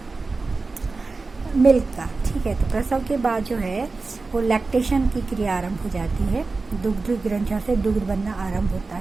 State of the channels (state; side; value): quieter; left; 3.8 dB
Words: मिल्क का। ठीक है, तो प्रसव के बाद जो है वो लैक्टेशन की क्रिया आरंभ हो जाती है, दुग्ध ग्रंथियों से दुग्ध बनना आरंभ होता